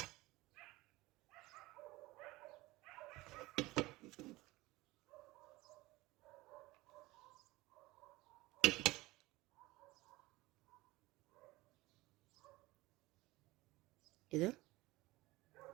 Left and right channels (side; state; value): left; quieter; 20.0 dB